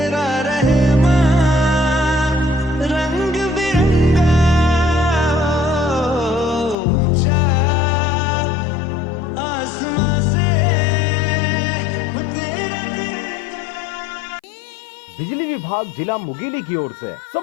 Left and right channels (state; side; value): drops out; right; at 6.8 s